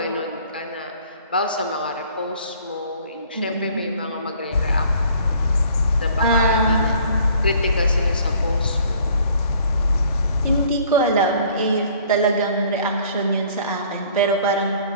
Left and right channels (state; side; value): inverted; both; correlation -0.55